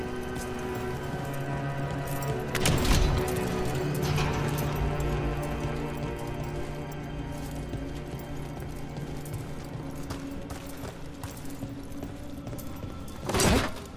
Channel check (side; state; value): both; identical; correlation 1.00